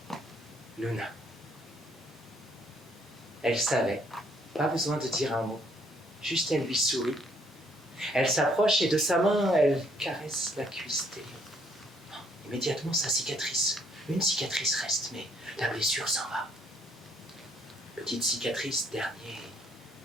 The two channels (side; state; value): both; normal; correlation 0.67